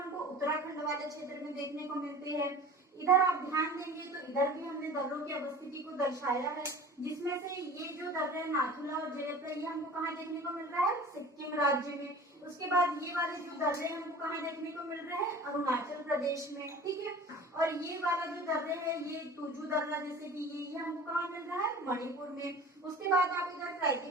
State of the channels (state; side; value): normal; both; correlation 0.40